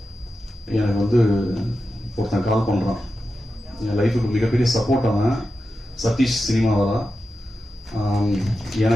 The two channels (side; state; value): both; normal; correlation 0.91